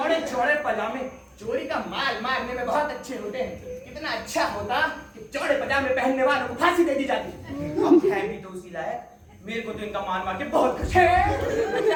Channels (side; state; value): both; identical; correlation 1.00